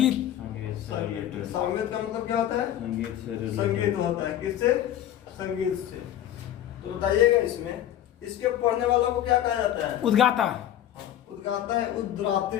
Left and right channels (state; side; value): quieter; right; 11.6 dB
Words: सामवेद का मतलब क्या होता है? संगीत होता है। किससे? संगीत से। तो बताइएगा इसमें इसके पढ़ने वालों को क्या कहा जाता है? उद्गाता। उद्गाता है